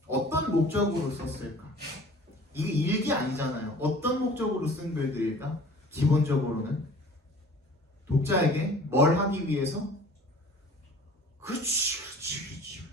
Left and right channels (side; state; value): both; normal; correlation 0.47